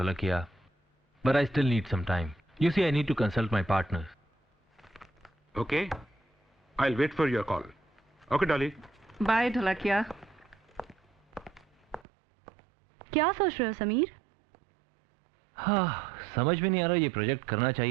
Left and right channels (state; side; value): drops out; left; at 12.1 s